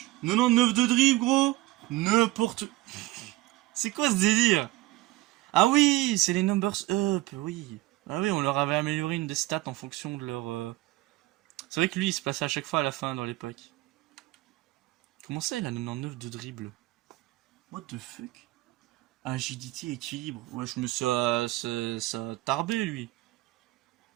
99 de dribble, gros. N'importe... C'est quoi ce délire? Ah oui, c'est les numbers up, oui. Ah oui, on leur avait amélioré une des stats en fonction de leur... C'est vrai que lui, il se passait à chaque fois à la fin dans les packs. Comment ça, il a 99 de dribble? What the fuck? Agilité, équilibre. Ouais, je me suis... ça a tarbé, lui.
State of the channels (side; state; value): left; quieter; 18.7 dB